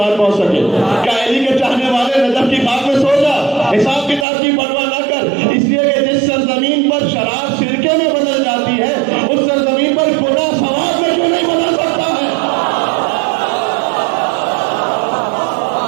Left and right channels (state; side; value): drops out; left; at 4.2 s